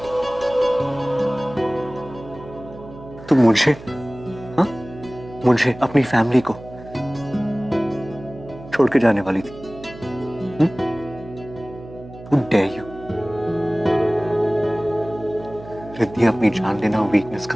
तू मुझे, हाँ, मुझे अपनी फैमिली को छोड़ के जाने वाली थी। Who dare you? रिद्धि, अपनी जान लेना वीकनेस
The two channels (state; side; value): noise; right; hum, 17 dB below the sound